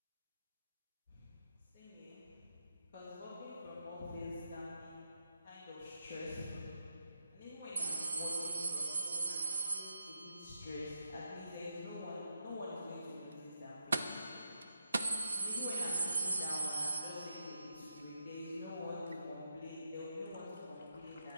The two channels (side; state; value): both; inverted; correlation -0.85